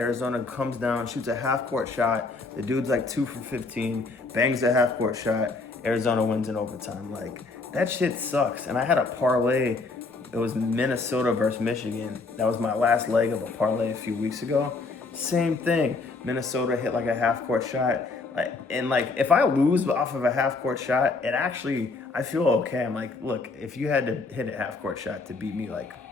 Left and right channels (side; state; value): right; quieter; 3.8 dB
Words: comes down, shoots a half court shot. The dude's like 2 for 15, bangs a half court shot. Arizona wins in overtime. Like that shit sucks. And I had a parlay. It was Minnesota versus Michigan. That was my last leg of a parlay a few weeks ago. Same thing. Minnesota hit like a half court shot. And like if I lose off of a half court shot, it actually, I feel okay. I'm like, look, if you had to hit a half court shot to beat me, like